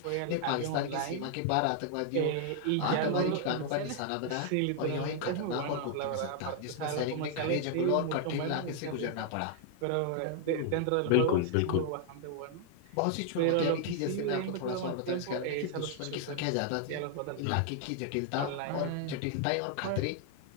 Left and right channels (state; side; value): different; both; correlation 0.00